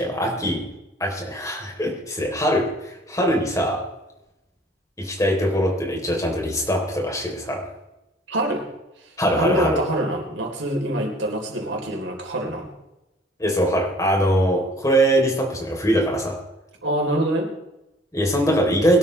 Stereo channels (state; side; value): normal; both; correlation 0.53